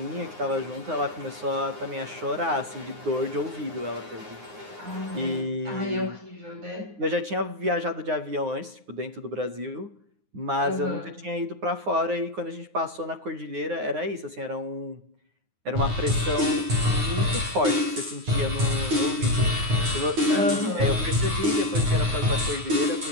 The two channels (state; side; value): late; left; 9.6 ms